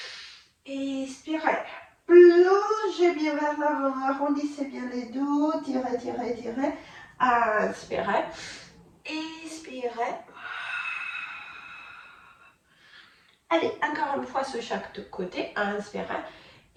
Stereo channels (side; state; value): both; identical; correlation 1.00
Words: expirez. Plongez bien vers l'avant, arrondissez bien les dos, tirez, tirez, tirez. Inspirez, expirez. Allez, encore une fois sur chaque côté. Inspirez,